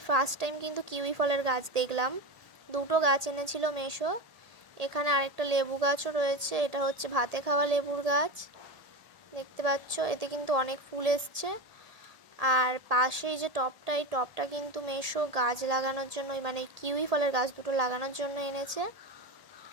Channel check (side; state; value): left; late; 1.8 ms